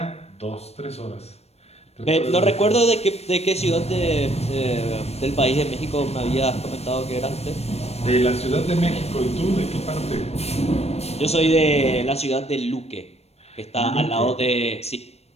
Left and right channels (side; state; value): right; late; 0.31 ms